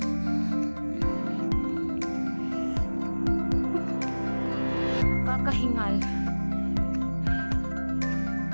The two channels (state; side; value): inverted; both; correlation -1.00